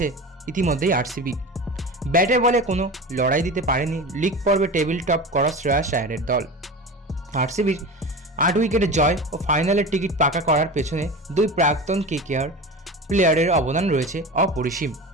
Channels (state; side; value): normal; both; correlation 0.30